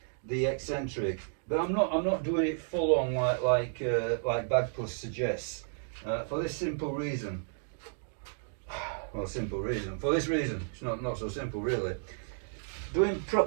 the eccentric, but I'm not doing it full on like Bagpuss suggests, for this simple reason. Well, simple reason. For this reason, it's not so simple really. Doing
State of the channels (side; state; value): left; silent; digital silence